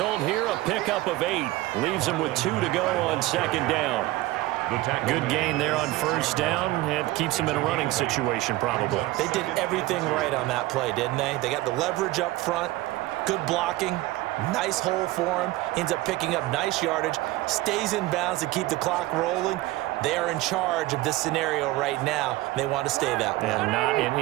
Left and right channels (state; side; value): quieter; left; 18.1 dB